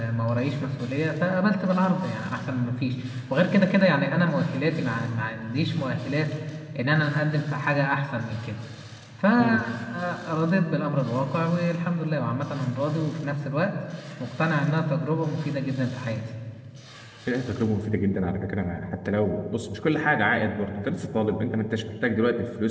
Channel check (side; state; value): both; identical; correlation 1.00